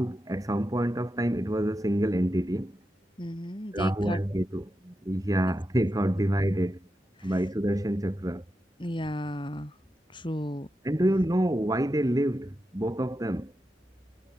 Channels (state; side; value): normal; both; correlation 0.88